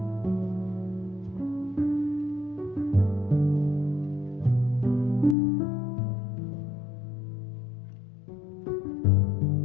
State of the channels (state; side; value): drops out; right; at 5.4 s